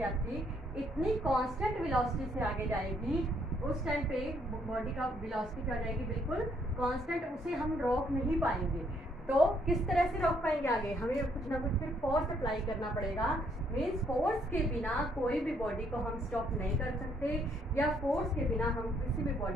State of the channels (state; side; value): normal; both; correlation 0.69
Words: आती इतनी कांस्टेंट वेलोसिटी से आगे जाएगी, उस टाइम पे बॉडी का वेलोसिटी क्या हो जाएगी, बिल्कुल कांस्टेंट, उसे हम रोक नहीं पाएंगे। तो किस तरह से रोक पाएंगे आगे, हमें कुछ ना कुछ फिर फोर्स अप्लाई करना पड़ेगा। मीन्स फोर्स के बिना कोई भी बॉडी को हम स्टॉप नहीं कर सकते, या फोर्स के बिना हम किसी भी